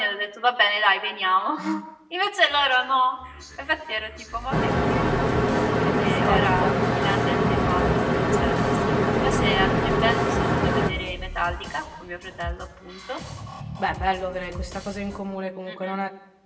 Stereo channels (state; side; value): identical; both; correlation 1.00